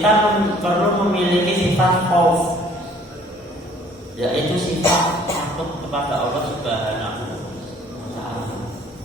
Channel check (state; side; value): normal; both; correlation 0.56